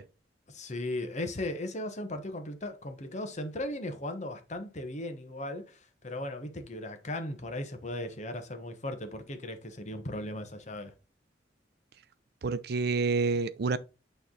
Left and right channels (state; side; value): normal; both; correlation 0.28